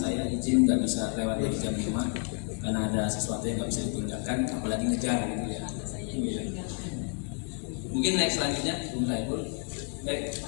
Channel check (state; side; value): quieter; right; 35.6 dB